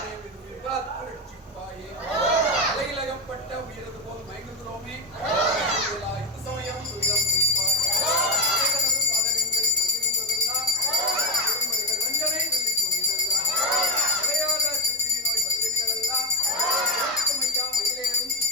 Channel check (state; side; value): normal; both; correlation 0.03